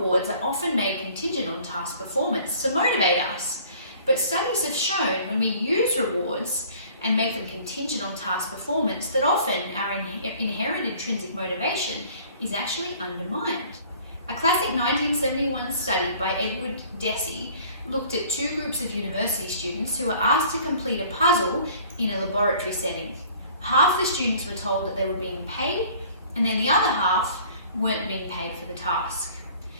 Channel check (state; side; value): inverted; both; correlation -0.52